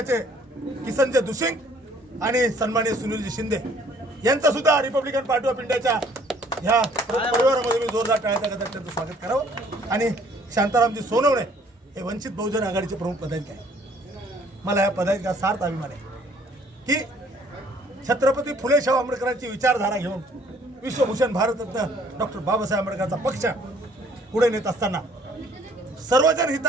किसनजी दुसिंग आणि सन्माननीय सुनीलजी शिंदे यांचं सुद्धा रिपब्लिकन पार्टी ऑफ इंडियाच्या ह्या परिवारामध्ये मी जोरदार टाळ्याच्या गजरात त्यांचं स्वागत करावं. आणि शांतारामजी सोनवणे हे वंचित बहुजन आघाडीचे प्रमुख पदाधिकारी आहेत. मला या पदाधिकाऱ्याचा सार्थ अभिमान आहे की छत्रपती फुले शाहू आंबेडकरांची विचारधारा घेऊन विश्वभूषण भारतरत्न डॉक्टर बाबासाहेब आंबेडकरांचा पक्ष पुढे नेत असताना सर्वजन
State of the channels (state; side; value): normal; both; correlation 0.59